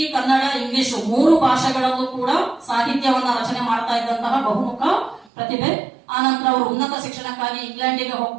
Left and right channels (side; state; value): left; drops out; at 5.2 s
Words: ಕನ್ನಡ, ಇಂಗ್ಲಿಷ್ 3 ಭಾಷೆಗಳಲ್ಲೂ ಕೂಡ ಸಾಹಿತ್ಯವನ್ನ ರಚನೆ ಮಾಡ್ತಾ ಇದ್ದಂತಹ ಬಹುಮುಖ ಪ್ರತಿಭೆ. ಆನಂತರ ಅವರು ಉನ್ನತ ಶಿಕ್ಷಣಕ್ಕಾಗಿ ಇಂಗ್ಲೆಂಡಿಗೆ